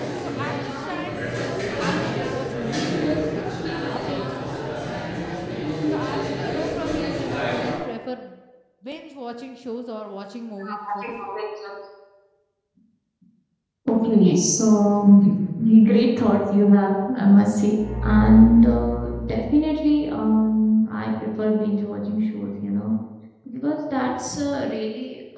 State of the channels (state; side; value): identical; both; correlation 1.00